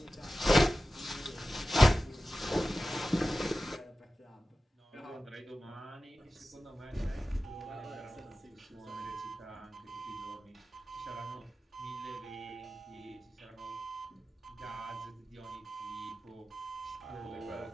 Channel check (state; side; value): normal; both; correlation 0.94